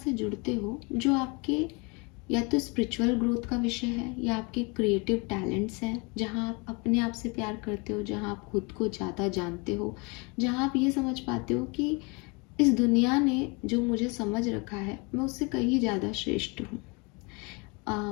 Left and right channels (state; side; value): quieter; right; 29.7 dB